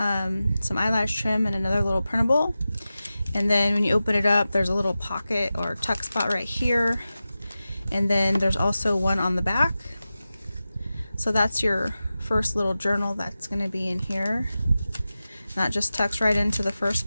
eyelash trim, and another little printable. And then when you open it up, there's a little pocket or tuck spot right here. And then there's also one on the back. So that's your first little journal that's going to be in here. That just tucks right into the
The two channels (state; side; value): inverted; both; correlation -0.94